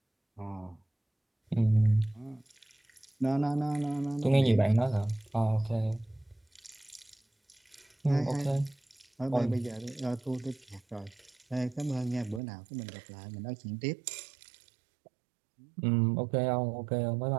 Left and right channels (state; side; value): drops out; left; at 12.4 s